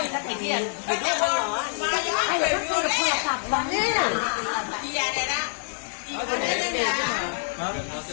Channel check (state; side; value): silent; right; digital silence